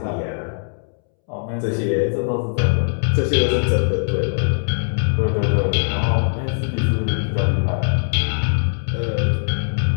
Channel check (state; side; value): silent; right; 65 dB below the other